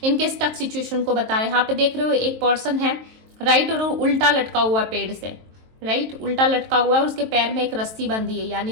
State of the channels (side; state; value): left; late; 23 ms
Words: इनके स्टक सिचुएशन को बता रहे हैं। यहाँ पे देख रहे हो एक पर्सन है राइट, और उल्टा लटका हुआ पेड़ से, राइट, उल्टा लटका हुआ है और उसके पैर में एक रस्सी बंधी है, यानी